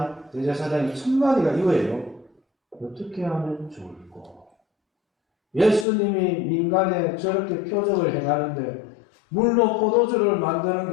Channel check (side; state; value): right; drops out; at 5.9 s